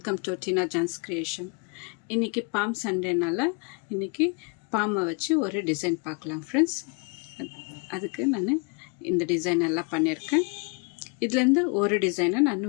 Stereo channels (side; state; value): right; quieter; 33.9 dB